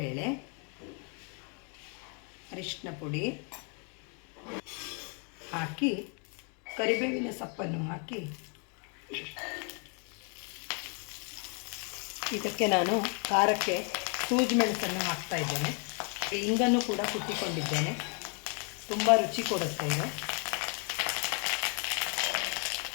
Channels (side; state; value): right; quieter; 38.4 dB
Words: ಅರಿಶಿನ ಪುಡಿ ಹಾಕಿ ಕರಿಬೇವಿನ ಸೊಪ್ಪನ್ನು ಹಾಕಿ ಇದಕ್ಕೆ ನಾನು ಖಾರಕ್ಕೆ ಸೂಜಿ ಮೆಣಸನ್ನು ಹಾಕ್ತಾ ಇದ್ದೇನೆ. ಇಂಗನ್ನು ಕೂಡ ಕುಟ್ಟಿಕೊಂಡಿದ್ದೇನೆ. ತುಂಬ ರುಚಿ ಕೊಡುತ್ತೆ ಇದು.